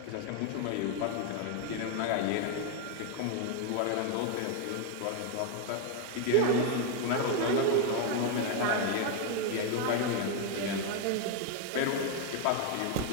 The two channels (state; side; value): different; both; correlation 0.01